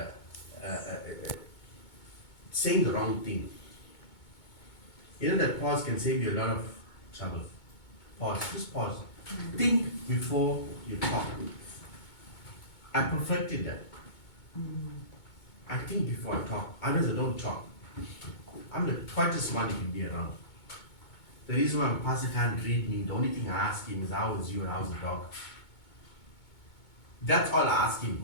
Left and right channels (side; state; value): right; late; 2.2 ms